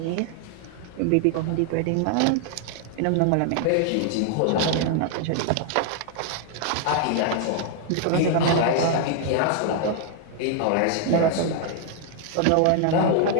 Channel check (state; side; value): different; both; correlation 0.00